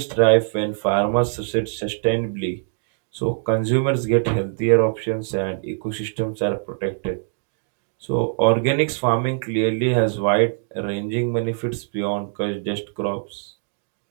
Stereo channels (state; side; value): silent; left; digital silence